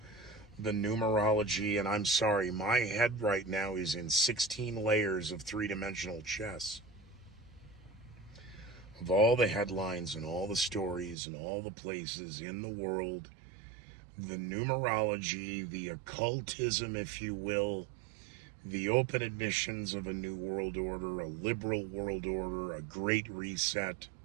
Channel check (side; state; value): left; drops out; at 11.2 s